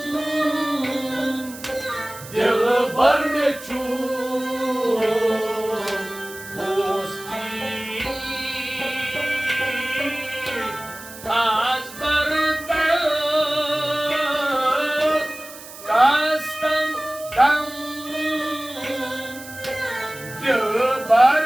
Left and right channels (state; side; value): noise; right; hiss, 16 dB below the sound